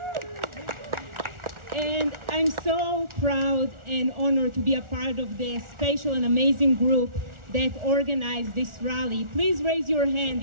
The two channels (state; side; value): late; left; 1.4 ms